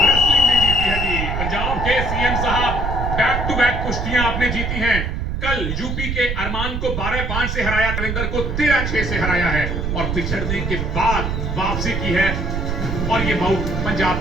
भी जीती है जी पंजाब के सीएम साहब। बैक टू बैक कुश्तियां आपने जीती हैं। कल यूपी के अरमान को 12-5 से हराया, रविंदर को 13-6 से हराया है और पिछड़ने के बाद वापसी की है और ये मऊ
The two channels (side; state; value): right; noise; rumble, 2 dB below the sound